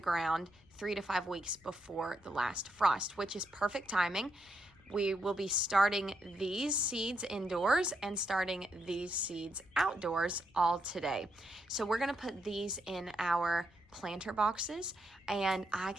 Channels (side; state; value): left; noise; rumble, 29 dB below the sound